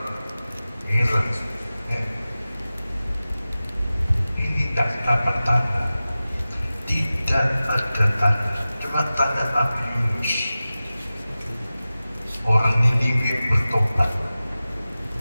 Heran. Ini tidak dapat tanda. Tidak ada tanda, cuma tanda Nabi Yunus. Orang Niniwe bertobat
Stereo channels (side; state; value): both; inverted; correlation -0.96